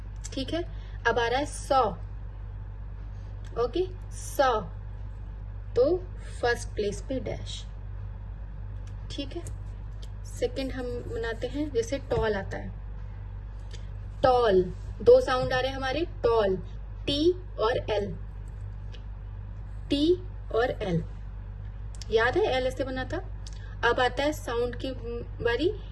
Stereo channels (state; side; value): identical; both; correlation 1.00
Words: ठीक है, अब आ रहा है 100, ओके, सॉ तो फर्स्ट प्लेस पे डैश, ठीक है। सेकंड हम बनाते हैं, जैसे टॉल आता है, टॉल, दो साउंड आ रहे हैं हमारे, टॉल, टी और एल, टी और एल, याद है एल ऐसे बना था। अब आता है साउंड की बारी,